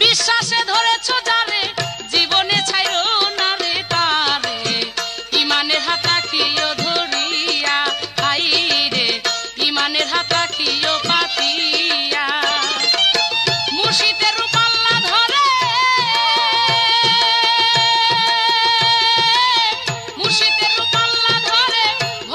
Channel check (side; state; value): both; identical; correlation 1.00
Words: বিশ্বাসে ধরেছ যারে জীবনে ছাইরো না রে তারে ইমানের হাত রাখিও ধরিয়া হাই রে ইমানের হাত রাখিও পাতিয়া মুর্শিদের রূপ আল্লাহ ধরে মুর্শিদের রূপ আল্লাহ ধরে